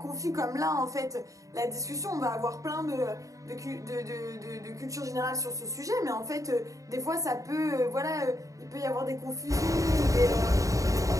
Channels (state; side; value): late; left; 0.16 ms